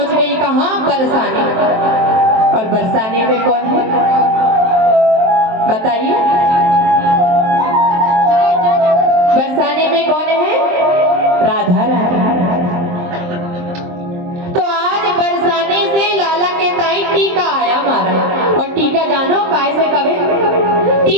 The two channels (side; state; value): left; late; 23 ms